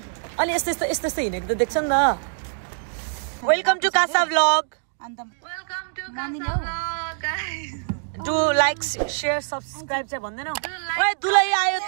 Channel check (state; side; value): silent; left; digital silence